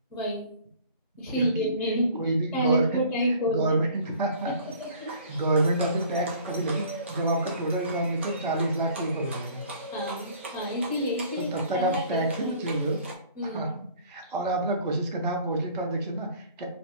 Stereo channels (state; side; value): inverted; both; correlation -0.50